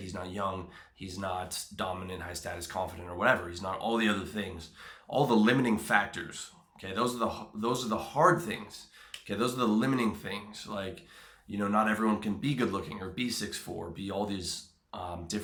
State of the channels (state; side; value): identical; both; correlation 1.00